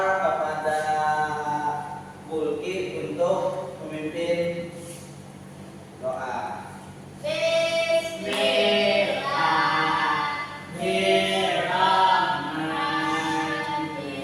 kepada Bulki untuk memimpin doa.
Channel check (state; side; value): identical; both; correlation 1.00